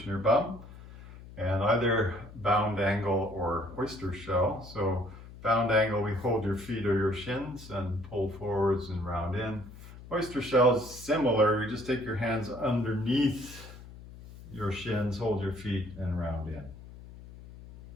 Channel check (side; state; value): left; noise; hum, 16 dB below the sound